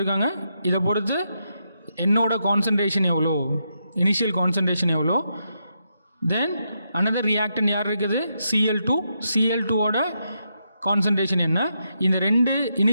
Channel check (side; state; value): both; inverted; correlation -0.82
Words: இதை பொறுத்து என்னோட கான்சன்ட்ரேஷன் எவ்வளோ, இனிஷியல் கான்சன்ட்ரேஷன் எவ்வளோ, தென் அனதர் ரியாக்டன் யார் இருக்குது? Cl2ஓட கான்சன்ட்ரேஷன் என்ன, இந்த ரெண்டு